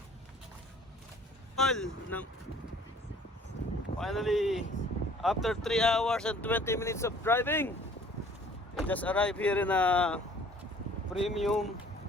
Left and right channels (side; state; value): both; normal; correlation 0.54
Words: Finally, after 3 hours and 20 minutes of driving, we just arrived here in a premium